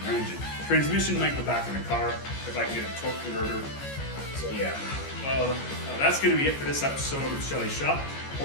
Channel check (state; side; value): late; right; 15 ms